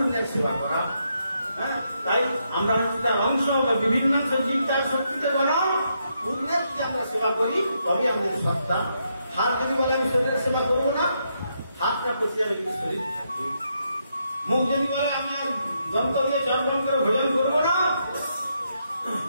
সেবা করা। হ্যাঁ, তাই আমরা তার অংশ বা বিভিন্ন জীব তার শক্তিতে বলা পূর্ণের যদি আমরা সেবা করি তবে আমাদের সত্তা। হাত যদি বলে আমি শরীরের সেবা করবো না, হাতটা পচে যাবে কিন্তু শরীর থাকবে। মুখ যদি বলে আমি আর দন্ত দিয়ে চর্বণ করে ভোজন করবো না,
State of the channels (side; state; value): both; inverted; correlation -0.79